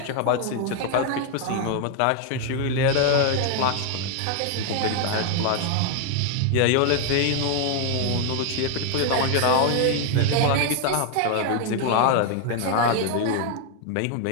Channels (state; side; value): different; both; correlation 0.00